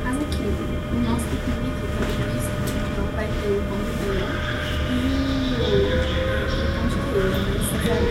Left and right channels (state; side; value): identical; both; correlation 1.00